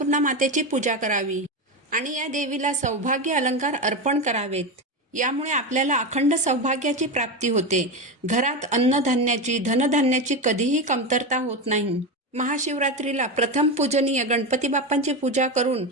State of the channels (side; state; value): both; normal; correlation 0.17